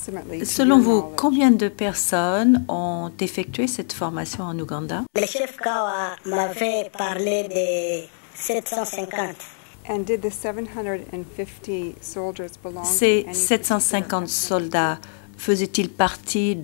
Selon vous, combien de personnes ont effectué cette formation en Ouganda? Le chef Kawa m'avait parlé de 750. Ces 750 soldats faisaient-ils partie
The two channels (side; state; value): right; silent; digital silence